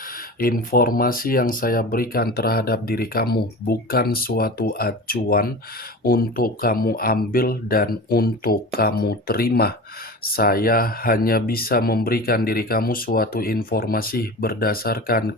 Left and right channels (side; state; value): both; normal; correlation 0.32